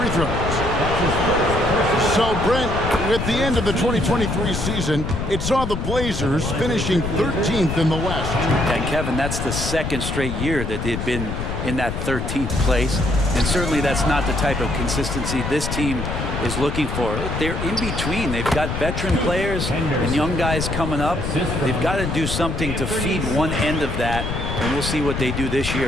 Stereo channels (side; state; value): left; noise; rumble, 4 dB below the sound